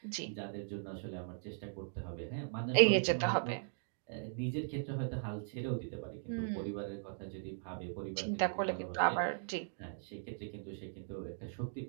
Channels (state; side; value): silent; left; digital silence